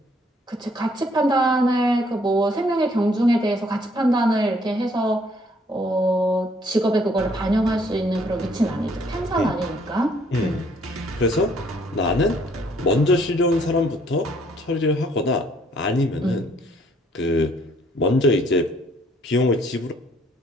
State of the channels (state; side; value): normal; both; correlation 0.64